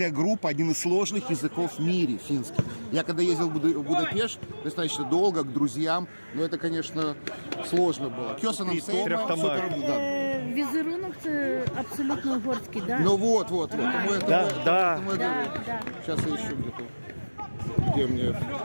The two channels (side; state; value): both; inverted; correlation -1.00